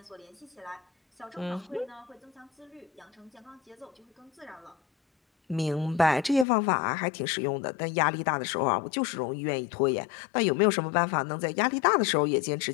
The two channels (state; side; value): drops out; right; at 6.5 s